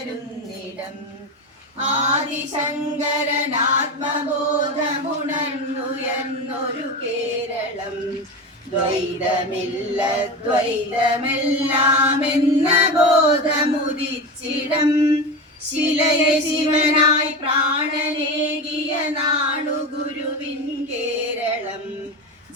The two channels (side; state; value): both; normal; correlation 0.23